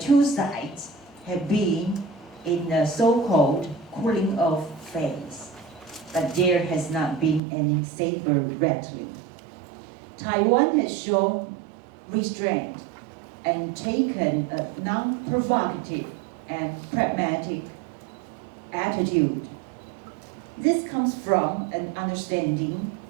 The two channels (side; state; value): left; drops out; at 7.4 s